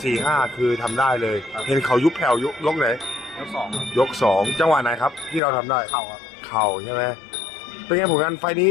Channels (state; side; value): drops out; right; at 5.4 s